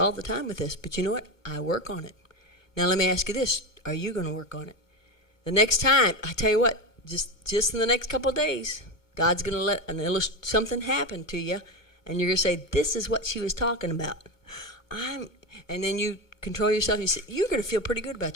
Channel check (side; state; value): right; late; 2.2 ms